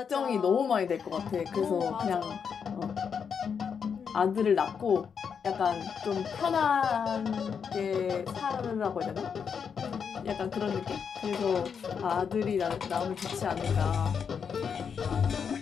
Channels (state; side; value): quieter; right; 6.7 dB